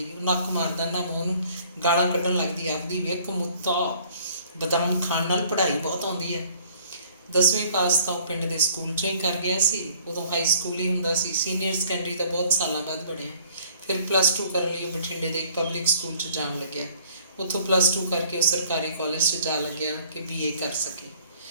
ਉਹ ਨੱਕ ਮਾਰਦਾ। ਨਾਮੋ ਉਹਨੂੰ ਗਾਲਾਂ ਕੱਢਣ ਲੱਗਦੀ, ਆਖਦੀ ਵੇਖ ਮੁੱਤਾ, ਬਦਾਮ ਖਾਣ ਨਾਲ ਪੜ੍ਹਾਈ ਬਹੁਤ ਆਉਂਦੀ ਹੈ। 10ਵੀਂ ਪਾਸ ਤਾਂ ਉਹ ਪਿੰਡ ਦੇ ਸਕੂਲ 'ਚੋਂ ਹੀ ਕਰ ਗਿਆ ਸੀ। ਉਦੋਂ ਹਾਈ ਸਕੂਲ ਹੀ ਹੁੰਦਾ ਸੀ। ਸੀਨੀਅਰ ਸੈਕੰਡਰੀ ਤਾਂ ਬਹੁਤ ਸਾਲਾਂ ਬਾਅਦ ਬਣਿਆ। ਫਿਰ +2 ਕਰਨ ਲਈ ਉਹ ਬਠਿੰਡੇ ਦੇ ਇੱਕ ਪਬਲਿਕ ਸਕੂਲ 'ਚ ਜਾਣ ਲੱਗਿਆ। ਉੱਥੋਂ +2 ਕਰਕੇ ਉਹ ਸਰਕਾਰੀ ਕਾਲਜ 'ਚ ਜਾ ਲੱਗਿਆ ਕਿ BA ਕਰ ਸਕੇ।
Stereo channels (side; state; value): both; inverted; correlation -0.57